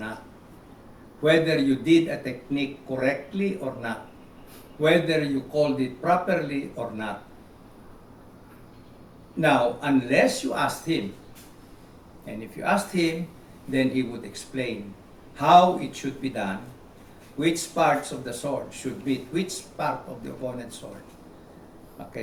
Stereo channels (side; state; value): both; identical; correlation 1.00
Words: whether you did a technique correctly or not, whether you called it properly or not. Now, unless you asked him, and if you asked him, then he would explain how it should be done, which parts of the sword should meet which part of the opponent's sword.